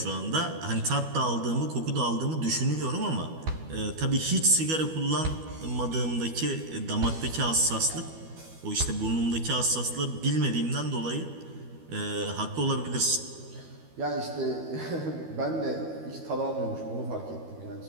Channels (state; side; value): late; left; 12 ms